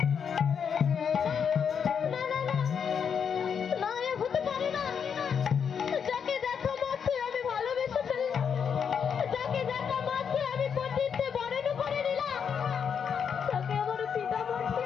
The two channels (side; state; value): right; quieter; 7.1 dB